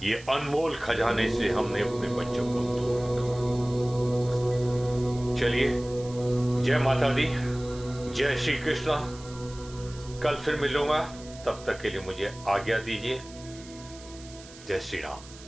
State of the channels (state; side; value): noise; right; hiss, 19 dB below the sound